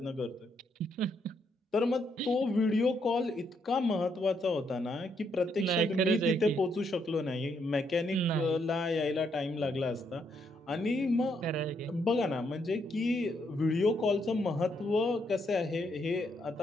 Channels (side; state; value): both; normal; correlation 0.75